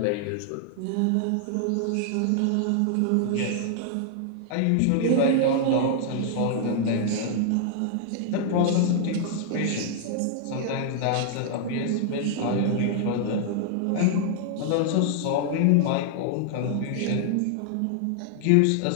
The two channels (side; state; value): both; different; correlation -0.01